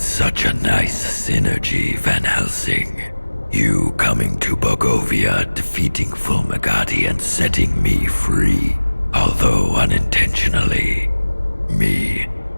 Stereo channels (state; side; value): inverted; both; correlation -1.00